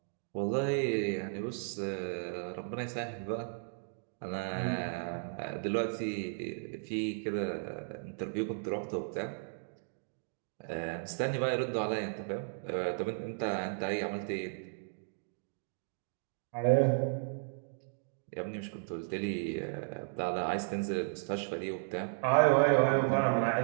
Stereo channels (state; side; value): silent; left; digital silence